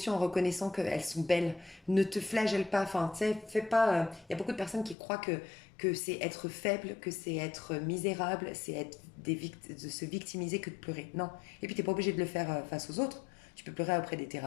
en reconnaissant qu'elles sont belles. Ne te flagelle pas. Enfin, tu sais, fais pas. Il y a beaucoup de personnes qui croient que c'est être faible, que c'est être misérable, c'est être de se victimiser que de pleurer. Non. Et puis, t'es pas obligé de le faire face aux autres. Tu peux pleurer auprès des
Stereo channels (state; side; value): drops out; right; at 5.0 s